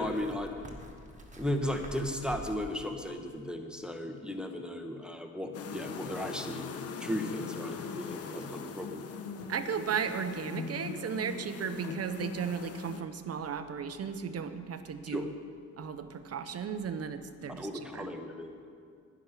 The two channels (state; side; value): normal; both; correlation 0.41